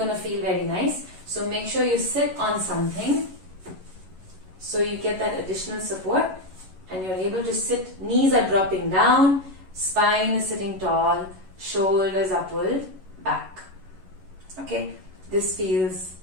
to feel very nice. So make sure you sit on something so you get that additional support and you're able to sit. Knees are dropping down, spine is sitting tall, shoulders are pulled back. Okay, this feels,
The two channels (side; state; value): left; late; 11 ms